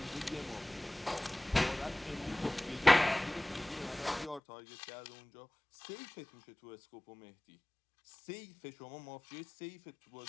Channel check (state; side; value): drops out; right; at 4.4 s